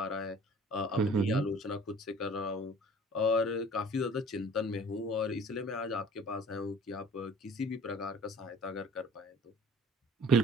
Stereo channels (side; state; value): both; normal; correlation 0.48